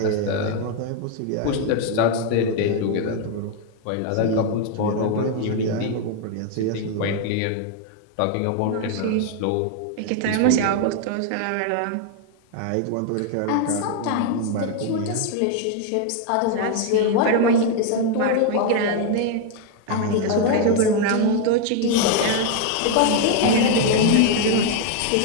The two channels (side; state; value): both; different; correlation 0.00